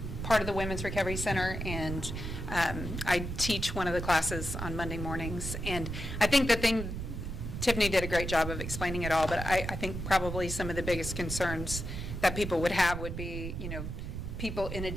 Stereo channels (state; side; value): noise; right; rumble, 5 dB below the sound